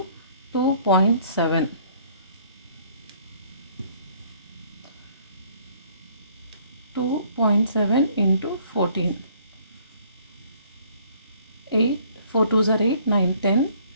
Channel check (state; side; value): inverted; both; correlation -0.60